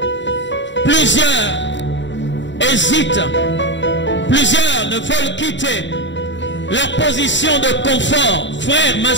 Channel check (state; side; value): late; right; 0.53 ms